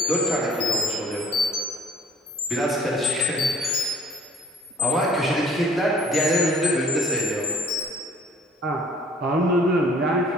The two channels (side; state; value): both; normal; correlation 0.55